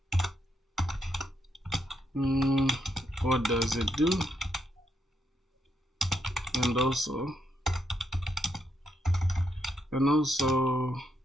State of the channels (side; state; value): both; normal; correlation 0.79